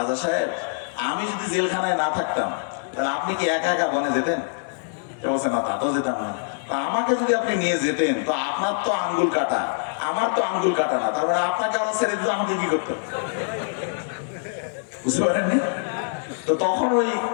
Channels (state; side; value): silent; right; 62 dB below the other